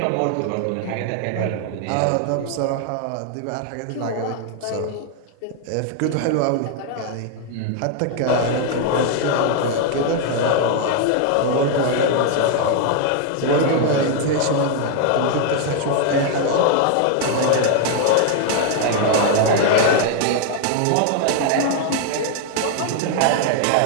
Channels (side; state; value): both; different; correlation 0.00